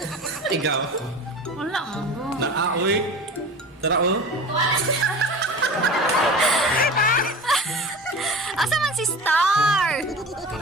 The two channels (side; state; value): both; normal; correlation 0.35